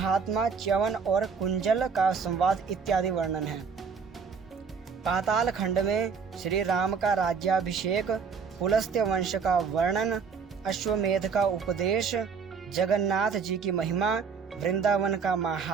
च्यवन और कुंजल का संवाद इत्यादि वर्णन है। पाताल खंड में श्री राम का राज्याभिषेक, पुलस्त्य वंश का वर्णन, अश्वमेध का उपदेश, जगन्नाथ जी की महिमा, वृंदावन का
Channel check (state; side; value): quieter; left; 5.9 dB